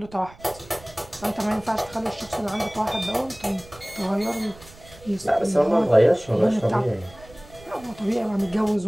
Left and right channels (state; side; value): noise; right; rumble, 22 dB below the sound